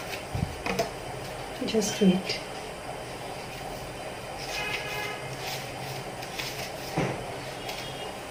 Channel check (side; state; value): both; identical; correlation 1.00